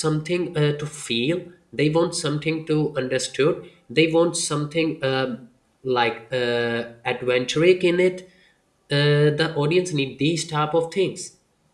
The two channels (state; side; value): identical; both; correlation 1.00